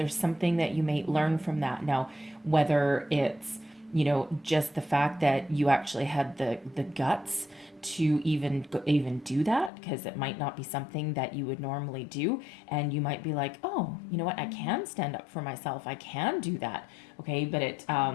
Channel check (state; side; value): drops out; right; at 9.7 s